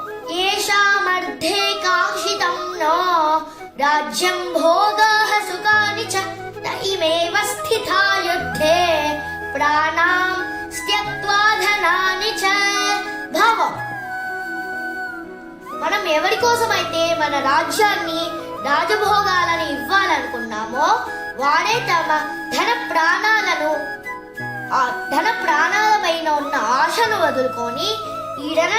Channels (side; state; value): both; identical; correlation 1.00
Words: ఏషామర్థే కాంక్షితం నో రాజ్యం భోగాః సుఖాని చ నైమేవ స్థితా యుద్ధే ప్రాణాం త్యక్త్వా ధనాని చ. భావం: మనం ఎవరి కోసమైతే మన రాజ్యాన్ని రాజభోగాలను ఇవ్వాలనుకున్నామో వాడే తమ ధన ప్రాణాలపైన ఉన్న ఆశను వదులుకొని ఈ